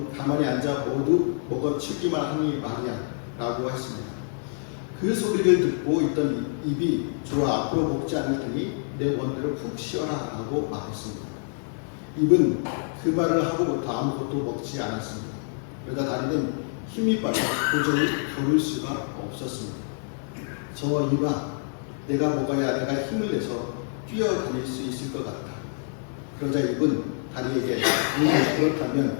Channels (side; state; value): right; silent; 60 dB below the other